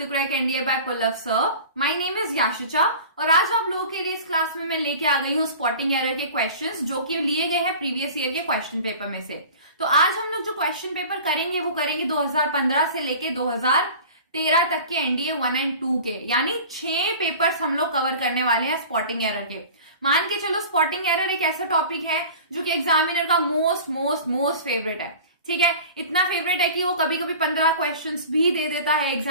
Crack NDA by Pullav Sir. My name is Yashicha और आज आप लोगों के लिए इस क्लास में मैं लेके आ गई हूँ स्पॉटिंग एरर के क्वेश्चंस जो कि लिए गए हैं प्रीवियस ईयर के क्वेश्चन पेपर में से। तो आज हम लोग जो क्वेश्चन पेपर करेंगे वो करेंगे 2015 से लेके 2013 तक के एनडीए 1 एंड 2 के, यानी 6 पेपर्स हम लोग कवर करने वाले हैं स्पॉटिंग एरर के। मान के चलो स्पॉटिंग एरर एक ऐसा टॉपिक है जो कि एग्जामिनर का मोस्ट फेवरेट है। ठीक है, इतना फेवरेट है कि वो कभी कभी 15 क्वेश्चंस भी दे देता है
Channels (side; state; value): both; inverted; correlation -0.40